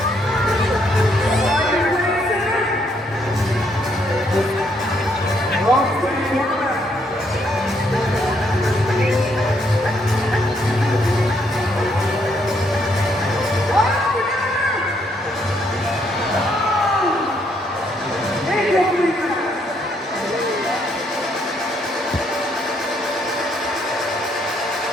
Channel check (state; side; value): normal; both; correlation 0.72